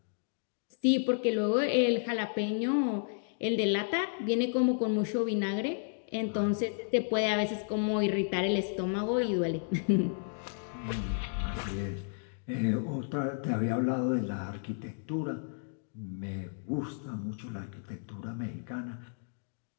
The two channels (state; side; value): silent; right; digital silence